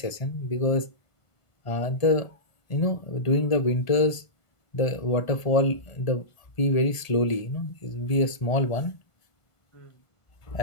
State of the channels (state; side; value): late; right; 1.7 ms